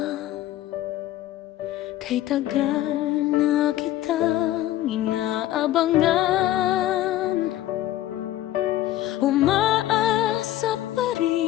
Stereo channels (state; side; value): quieter; right; 14.0 dB